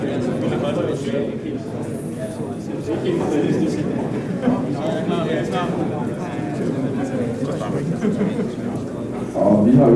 Og vi har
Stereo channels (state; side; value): identical; both; correlation 1.00